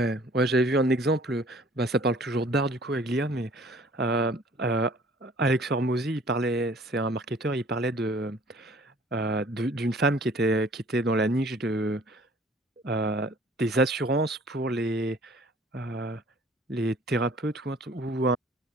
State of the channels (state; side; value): normal; both; correlation 0.53